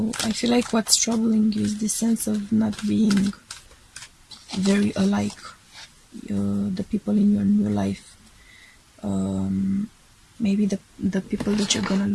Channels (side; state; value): both; identical; correlation 1.00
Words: I feel like what's troubling you is the sense of not being very alike, the people in your new life. Maybe the people that you're gonna